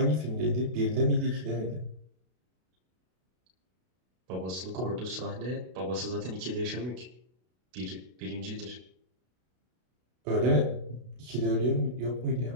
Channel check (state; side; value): late; left; 32 ms